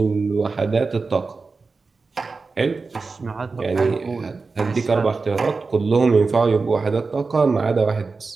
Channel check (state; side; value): quieter; left; 4.2 dB